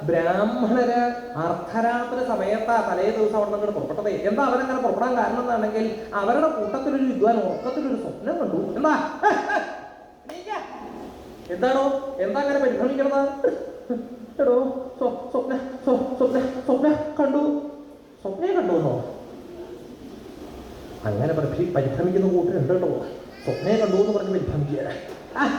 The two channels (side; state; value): both; identical; correlation 1.00